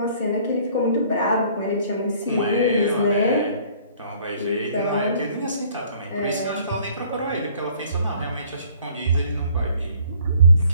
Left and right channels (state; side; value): inverted; both; correlation -0.57